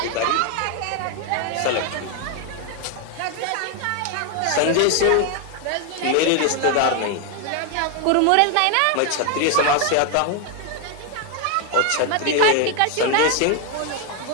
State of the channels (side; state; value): both; different; correlation 0.01